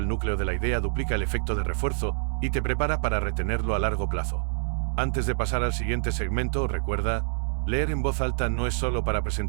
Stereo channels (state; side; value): silent; left; digital silence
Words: núcleo de la idea duplica el efecto de refuerzo y te prepara para retenerlo a largo plazo. Antes de pasar al siguiente segmento, recuerda, leer en voz alta no es solo para